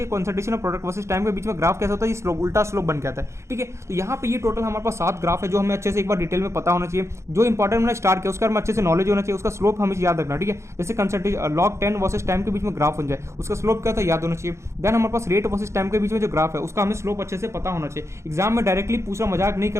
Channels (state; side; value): late; left; 0.14 ms